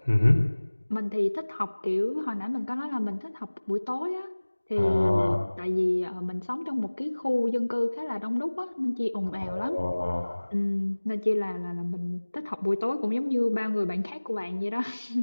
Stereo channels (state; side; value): inverted; both; correlation -1.00